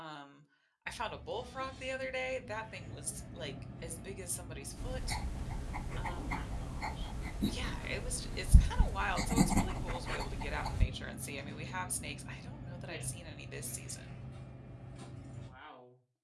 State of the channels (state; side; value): identical; both; correlation 1.00